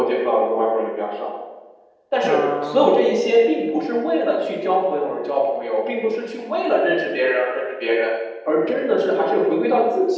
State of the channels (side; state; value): both; identical; correlation 1.00